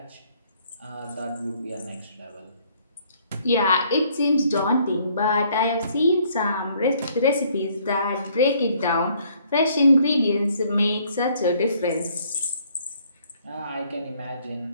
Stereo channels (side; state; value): both; inverted; correlation -0.64